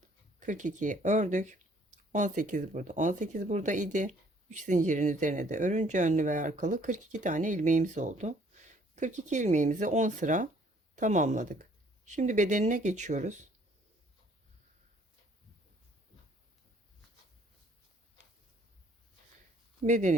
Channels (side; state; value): both; normal; correlation 0.61